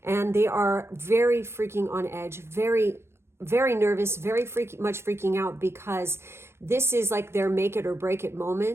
And they are very freaking on edge, very nervous, very much freaking out because this is like their make it or break it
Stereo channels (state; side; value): late; left; 0.12 ms